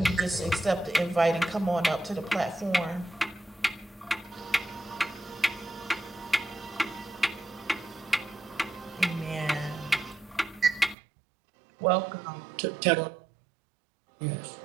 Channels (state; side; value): drops out; left; at 11.0 s